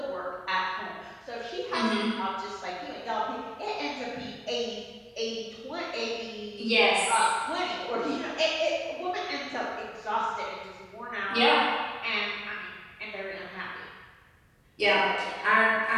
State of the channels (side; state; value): both; identical; correlation 1.00